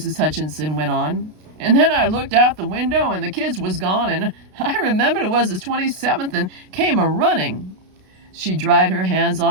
Hutchinson went on. "And then I looked out the window and the kids was gone, and I remembered it was the 27th and came a-running." She dried her hands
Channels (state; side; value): late; left; 32 ms